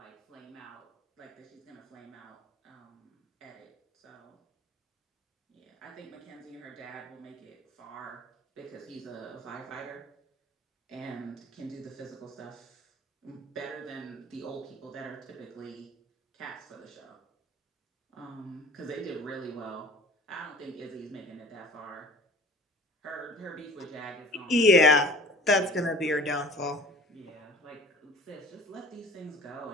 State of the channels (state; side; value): normal; both; correlation 0.44